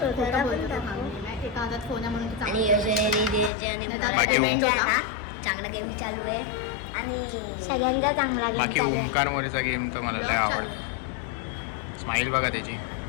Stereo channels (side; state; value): right; drops out; at 3.5 s